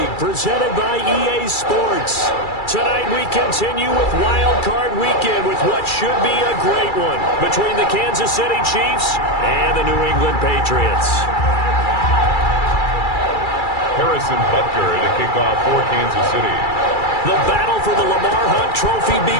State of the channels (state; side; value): late; right; 2.3 ms